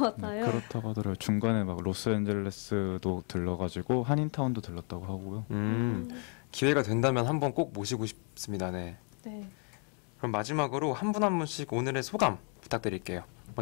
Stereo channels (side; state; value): right; quieter; 36.4 dB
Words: 그렇다고 하더라고요. 중간에 막 로스앤젤레스도 들러가지고 한인타운도 들렀다고 하고요. 기회가 된다면 한번 꼭 모시고 싶습니다. 네. 네. 그럼 마지막으로 한 분 한 분씩 오늘의 소감 부탁드릴게요.